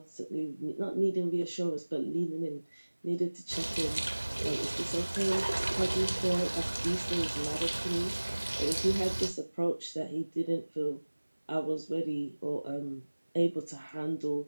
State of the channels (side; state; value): both; inverted; correlation -1.00